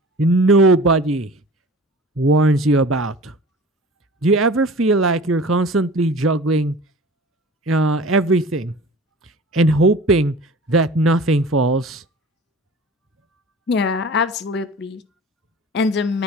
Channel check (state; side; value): normal; both; correlation 0.41